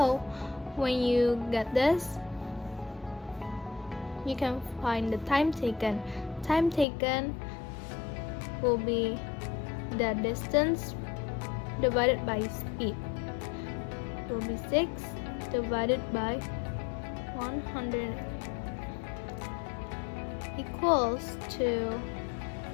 when you get this, you can find the time taken. Time taken will be the distance divided by speed. It will be 6 divided by 100 equals to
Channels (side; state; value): right; drops out; at 6.9 s